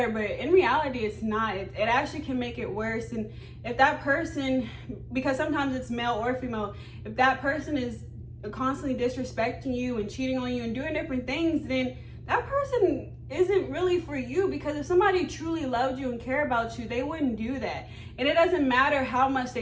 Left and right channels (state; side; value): identical; both; correlation 1.00